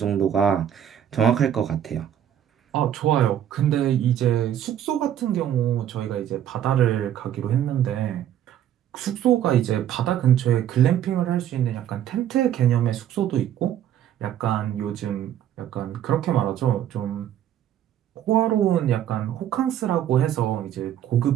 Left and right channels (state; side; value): quieter; left; 10.6 dB